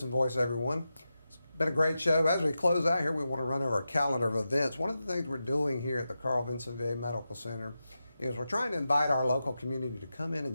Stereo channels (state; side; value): inverted; both; correlation -0.90